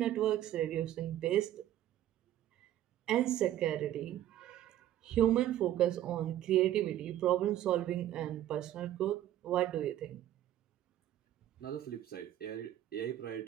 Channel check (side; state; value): left; quieter; 12.7 dB